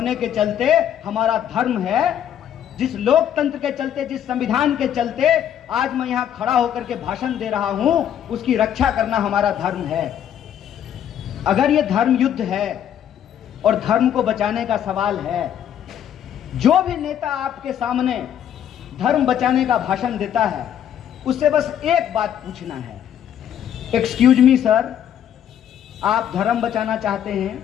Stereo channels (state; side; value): quieter; right; 9.9 dB